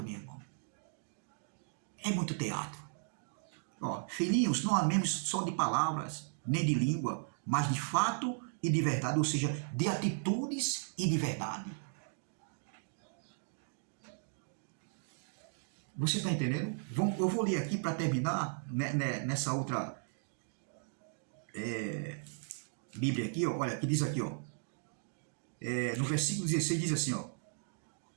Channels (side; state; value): left; silent; digital silence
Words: meu irmão. É muito teatro. Ó, filhinhos, não amemos só de palavras, nem de língua, mas de fato e de verdade, ou seja, de atitudes e de verdade. Você está entendendo? Eu vou ler aqui para terminar nessa outra Bíblia aqui, ó, olha, que diz aqui, ó, no versículo 16 diz assim, ó,